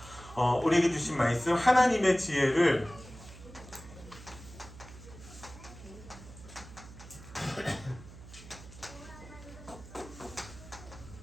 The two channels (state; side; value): noise; right; hum, 17 dB below the sound